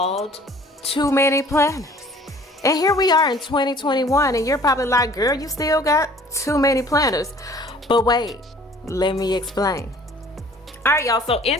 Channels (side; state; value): both; normal; correlation 0.52